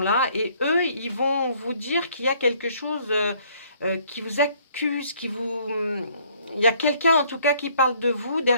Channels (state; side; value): inverted; both; correlation -0.62